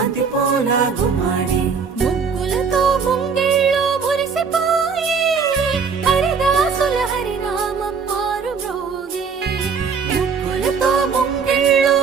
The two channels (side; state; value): left; quieter; 5.8 dB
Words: పూల గుమ్మాడి ముగ్గులతో ముంగిళ్ళు మురిసిపోయి హరిదాసుల హరినామం మారు మ్రోగే ముగ్గులతో ముంగిళ్ళు